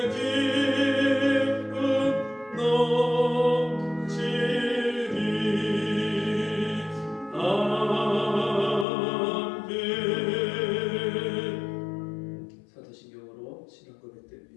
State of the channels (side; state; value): right; drops out; at 8.8 s